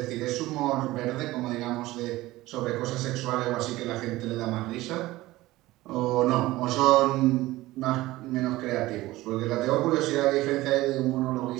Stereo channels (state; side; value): quieter; left; 17.9 dB